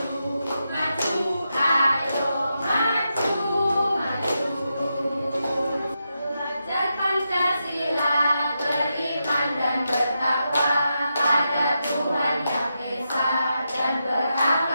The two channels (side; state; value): both; inverted; correlation -0.86